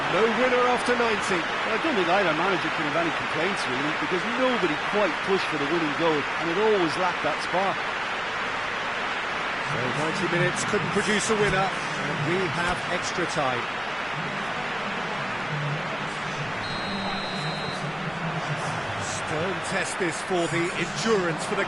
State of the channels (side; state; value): left; noise; rumble, 22 dB below the sound